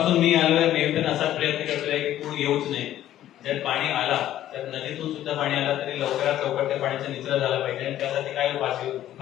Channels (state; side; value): quieter; right; 12.6 dB